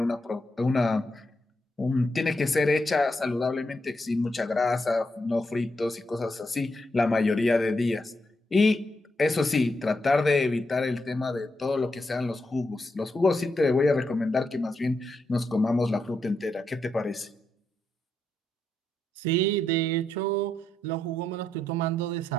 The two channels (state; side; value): normal; both; correlation 0.82